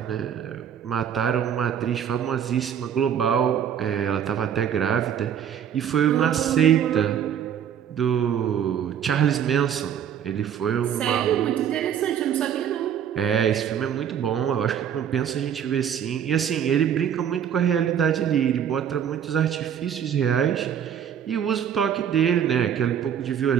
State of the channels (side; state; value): left; quieter; 8.9 dB